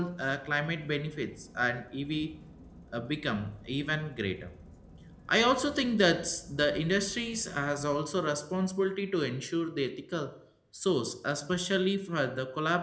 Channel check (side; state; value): both; identical; correlation 1.00